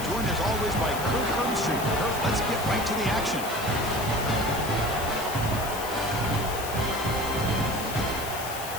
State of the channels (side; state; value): left; noise; hiss, 9 dB below the sound